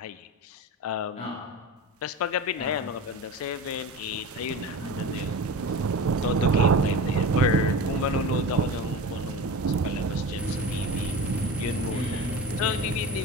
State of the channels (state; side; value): normal; both; correlation 0.30